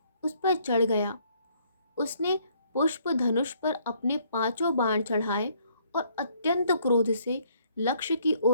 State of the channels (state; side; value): inverted; both; correlation -0.65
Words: उस पर चढ़ गया। उसने पुष्प धनुष पर अपने 5 बाण चढ़ाए और अत्यंत क्रोध से लक्ष्य की